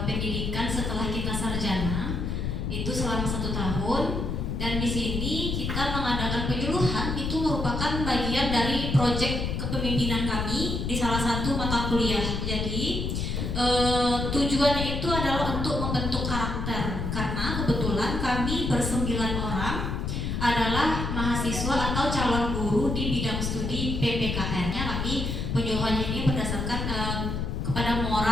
pendidikan setelah kita sarjana, itu selama 1 tahun. Dan di sini kita mengadakan penyuluhan, itu merupakan bagian dari proyek kepemimpinan kami di salah satu mata kuliah. Jadi tujuannya itu adalah untuk membentuk karakter, karena kebetulan kami ber9 orang adalah mahasiswa atau calon guru di bidang studi PPKR-nya. Kami penyuluhannya ini berdasarkan kepada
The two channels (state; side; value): noise; left; rumble, 2 dB below the sound